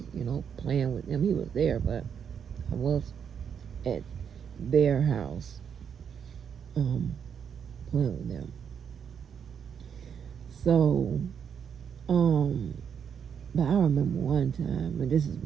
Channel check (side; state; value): left; quieter; 7.5 dB